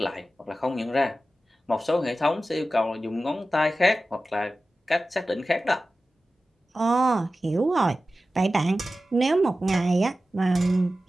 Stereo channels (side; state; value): both; normal; correlation 0.94